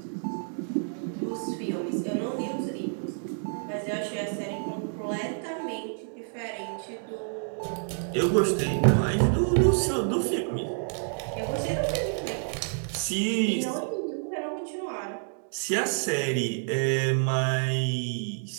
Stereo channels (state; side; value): silent; left; digital silence